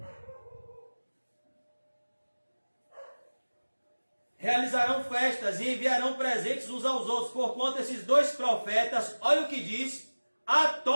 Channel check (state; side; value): inverted; both; correlation -1.00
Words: Realizarão festas e enviarão presentes uns aos outros, porquanto esses dois profetas, olha o que diz,